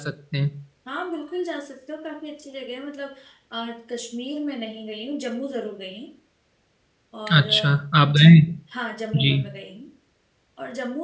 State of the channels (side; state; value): both; identical; correlation 1.00